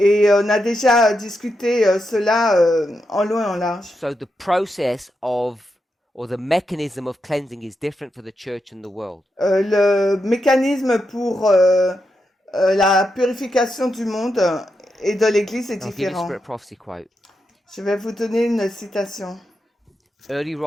on a déjà discuté cela en long et en large. So the process of, or the mechanism of cleansing is different for the church and the world. Le mécanisme pour la purification du monde et de l'Église est I'll give you a différent. Spirit Prophecy quote. Je vais vous donner une citation. Early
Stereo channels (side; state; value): both; normal; correlation 0.85